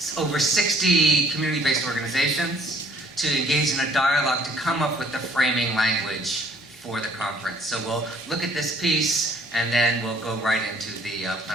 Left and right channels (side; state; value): both; normal; correlation 0.59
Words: over 60 community-based organizations to engage in a dialogue to come up with the framing language for the conference. So we'll look at this piece, and then we'll go right into the